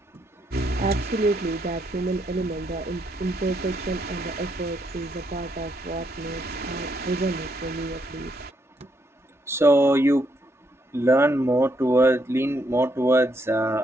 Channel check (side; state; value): both; normal; correlation 0.75